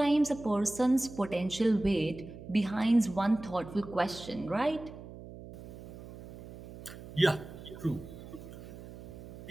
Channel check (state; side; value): noise; right; hum, 14 dB below the sound